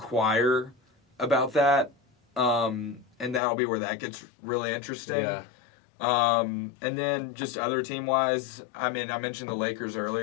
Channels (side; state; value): right; drops out; at 3.4 s